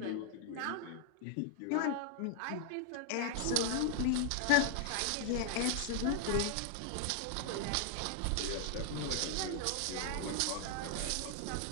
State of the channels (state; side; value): different; both; correlation 0.00